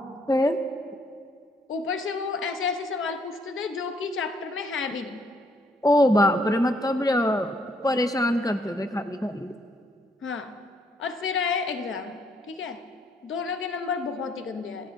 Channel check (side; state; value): both; normal; correlation 0.69